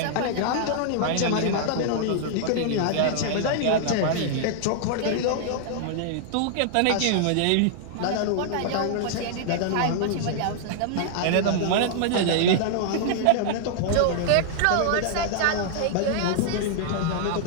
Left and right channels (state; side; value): different; both; correlation -0.01